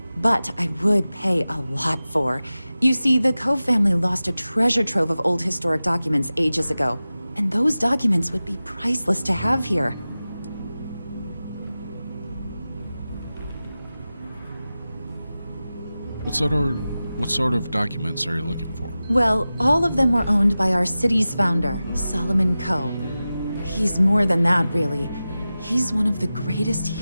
But I would pay a lot for. You see, the Cove family lost a treasure trove of old historic documents ages ago, and those documents would be priceless to have here. What sort of documents are you looking for? Well, all of them were owned by our city's founder, Solomon Coe. He's more than that, really. He's one of the greatest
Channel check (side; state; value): both; inverted; correlation -0.95